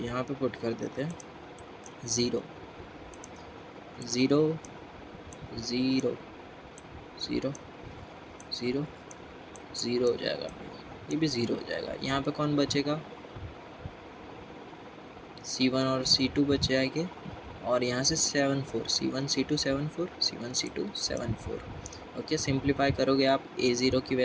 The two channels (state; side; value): identical; both; correlation 1.00